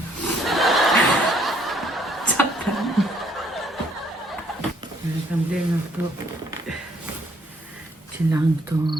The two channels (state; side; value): normal; both; correlation 0.65